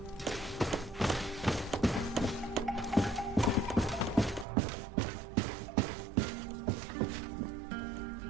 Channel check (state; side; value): drops out; left; at 4.5 s